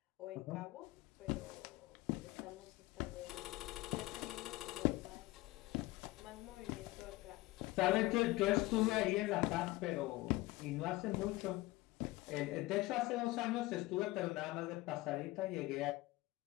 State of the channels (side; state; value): right; quieter; 19.6 dB